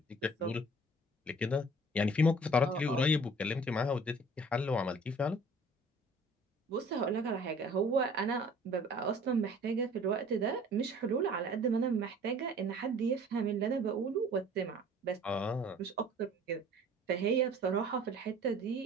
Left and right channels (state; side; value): normal; both; correlation 0.50